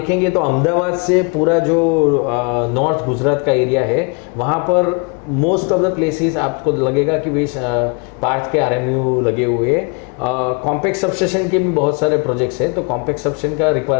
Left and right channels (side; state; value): right; quieter; 34.1 dB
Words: तो अहमदाबाद से पूरा जो नॉर्थ गुजरात का एरिया है वहाँ पर मोस्ट ऑफ द प्लेसेस आपको लगेगा कि भाई पार्थ के RMU लगे हुए हैं। कॉम्पैक्ट सबस्टेशन के भी बहुत सारे प्रोजेक्ट्स हैं, तो कॉम्पैक्ट सबस्टेशन का